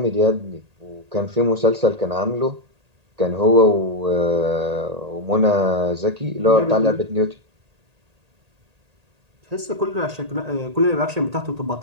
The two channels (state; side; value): late; left; 1.8 ms